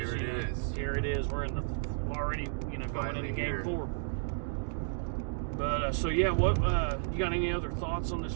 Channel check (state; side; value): silent; left; digital silence